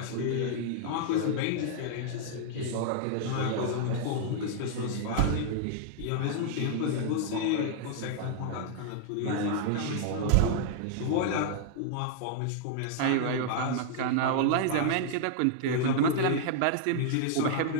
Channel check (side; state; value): both; different; correlation -0.01